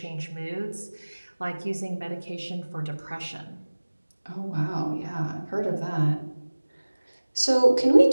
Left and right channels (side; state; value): both; inverted; correlation -1.00